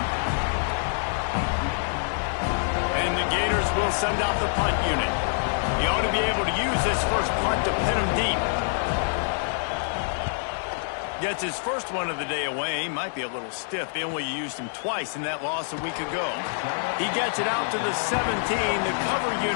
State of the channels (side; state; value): right; silent; digital silence